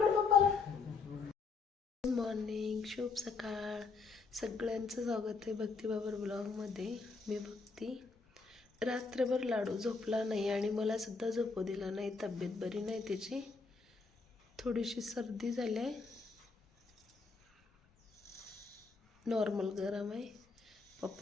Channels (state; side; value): quieter; right; 4.5 dB